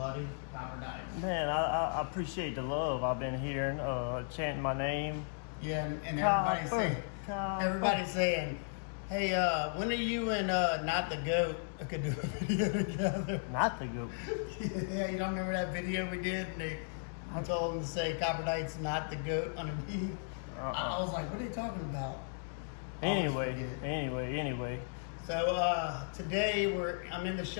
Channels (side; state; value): right; silent; digital silence